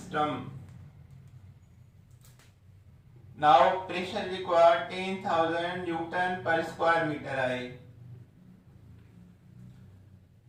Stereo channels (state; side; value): identical; both; correlation 1.00